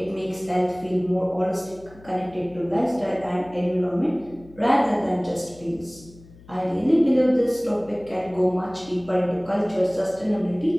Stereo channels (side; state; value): left; noise; hum, 23 dB below the sound